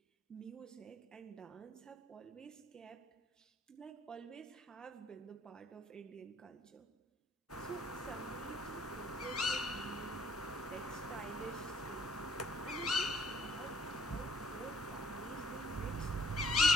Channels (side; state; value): both; normal; correlation 0.62